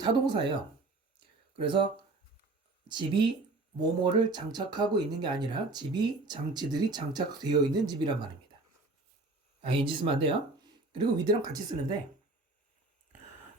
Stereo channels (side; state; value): left; quieter; 3.2 dB